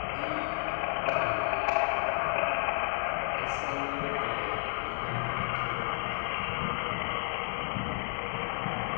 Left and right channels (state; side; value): silent; right; 57 dB below the other